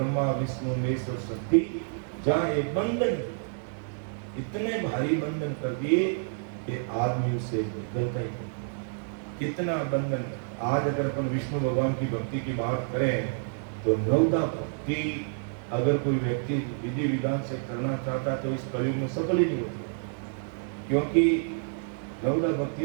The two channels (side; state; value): left; silent; digital silence